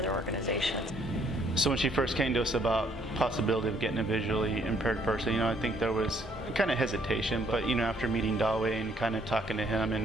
organizations. So when she first came to us about possibility of getting a visually impaired person, I think there was kind of hesitation, but after meeting Dawei and kind of talking to him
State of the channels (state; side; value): normal; both; correlation 0.66